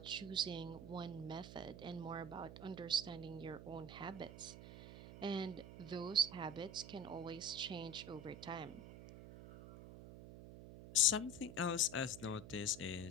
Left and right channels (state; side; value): noise; right; hum, 12 dB below the sound